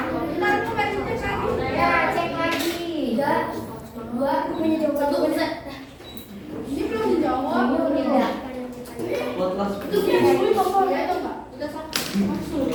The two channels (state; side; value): identical; both; correlation 1.00